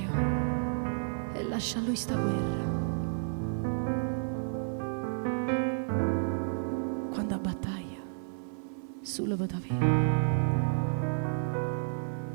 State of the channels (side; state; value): left; silent; 56 dB below the other